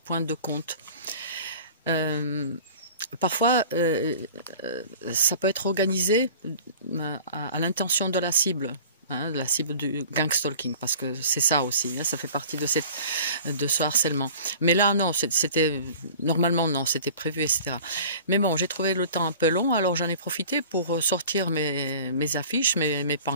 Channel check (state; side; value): inverted; both; correlation -0.44